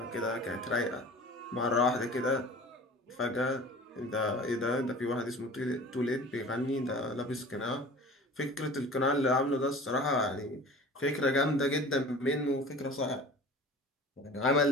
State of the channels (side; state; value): both; normal; correlation 0.41